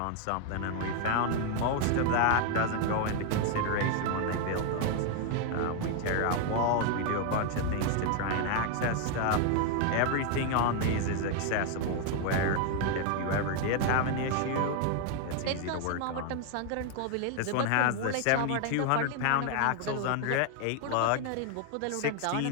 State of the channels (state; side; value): different; both; correlation 0.00